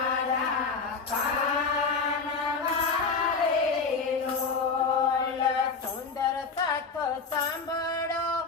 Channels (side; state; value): right; quieter; 4.8 dB